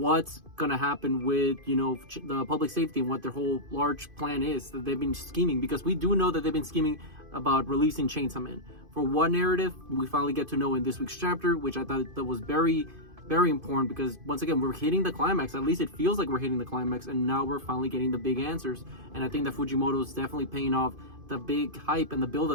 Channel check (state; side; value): late; left; 2.5 ms